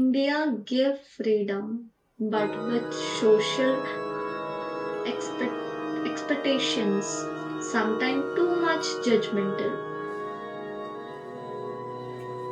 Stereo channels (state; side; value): identical; both; correlation 1.00